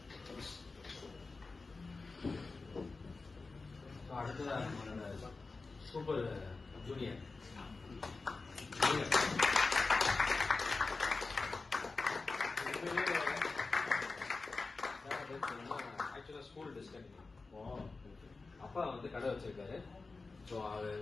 அடுத்ததாக நம்மளோட சூப்பர் ஜூனியர் ஆக்சுவலா ஸ்கூல் டிஸ்கண்டினியூ. அப்பா வந்து கடை வச்சிருக்காரு. ஸோ அவர்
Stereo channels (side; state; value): right; quieter; 3.9 dB